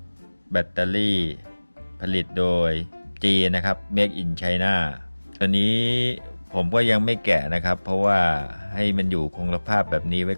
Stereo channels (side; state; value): both; inverted; correlation -1.00